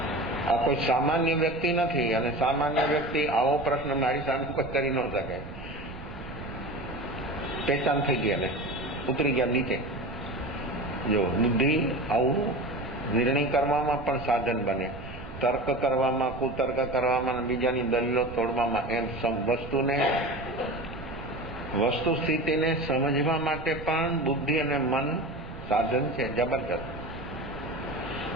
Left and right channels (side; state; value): right; noise; rumble, 13 dB below the sound